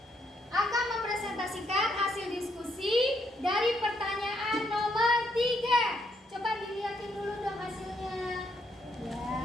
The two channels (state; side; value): normal; both; correlation 0.74